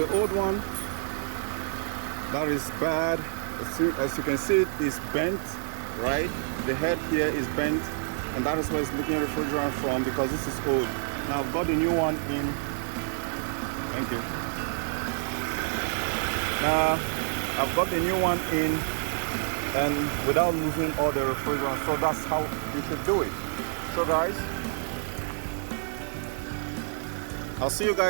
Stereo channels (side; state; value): left; silent; 59 dB below the other